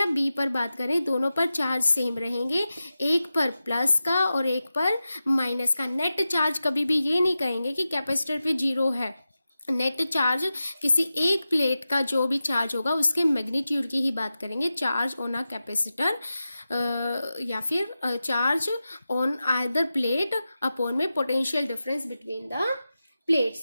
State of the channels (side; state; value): both; inverted; correlation -0.93